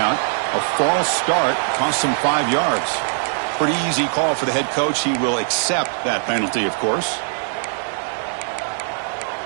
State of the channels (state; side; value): silent; left; digital silence